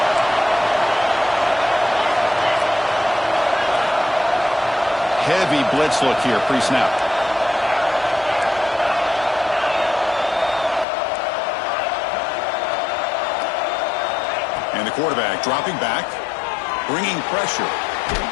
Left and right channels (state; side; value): drops out; right; at 10.9 s